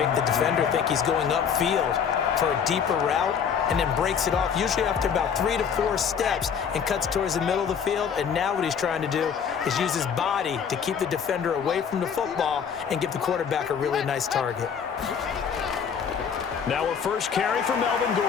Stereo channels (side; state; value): right; quieter; 7.2 dB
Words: the defender think he's going upfield for a deeper route and then breaks it off, usually after about 3 to 4 steps, and cuts towards the middle of the field. And now what he's trying to do is use his body to keep the defender away from the football and give the quarterback a really nice target. Now a first carry for Melvin